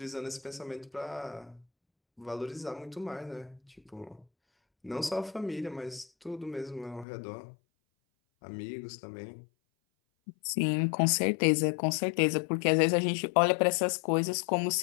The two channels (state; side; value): drops out; right; at 7.1 s